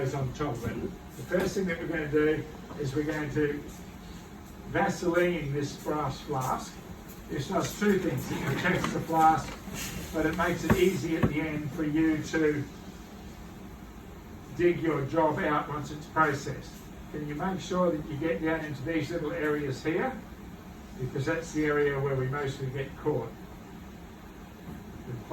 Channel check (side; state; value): both; identical; correlation 1.00